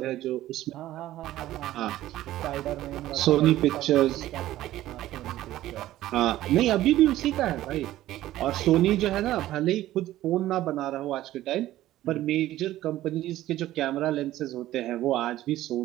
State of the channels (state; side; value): quieter; left; 14.5 dB